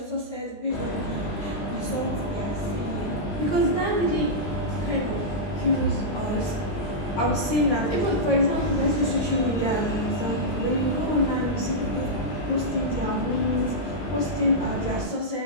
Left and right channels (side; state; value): right; late; 20 ms